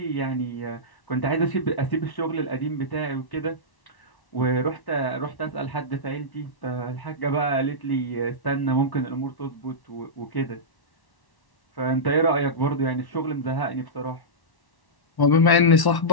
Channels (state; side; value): late; right; 1.1 ms